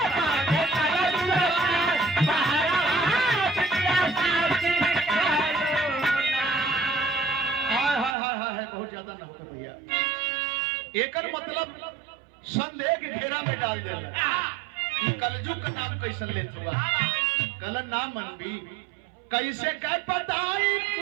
एकर मतलब संदेह के घेरा में डाल देना। कलजुग का नाम कैसे लेत हुआ कल नाम मनबी कैसे कह बताई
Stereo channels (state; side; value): drops out; left; at 8.2 s